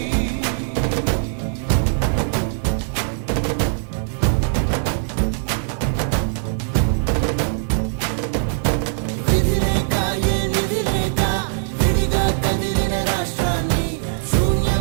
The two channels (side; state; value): left; silent; 56 dB below the other